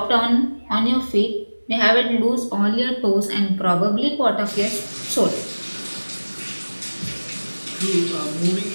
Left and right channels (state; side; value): inverted; both; correlation -1.00